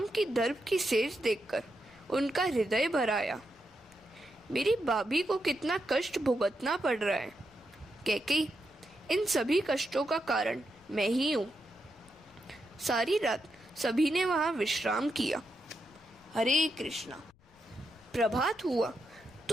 की दर्भ की सेज देखकर उनका हृदय भर आया। मेरी भाभी को कितना कष्ट भुगतना पड़ रहा है। कैकेयी, इन सभी कष्टों का कारण मैं ही हूँ। सारी रात सभी ने वहां विश्राम किया। हरे कृष्णा। प्रभात हुआ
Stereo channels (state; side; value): noise; left; rumble, 30 dB below the sound